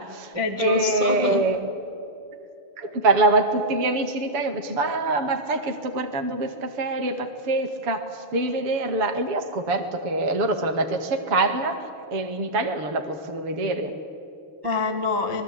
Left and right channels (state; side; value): late; left; 7.0 ms